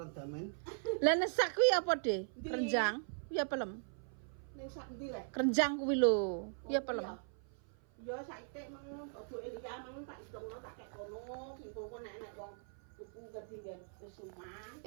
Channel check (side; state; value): left; silent; 52 dB below the other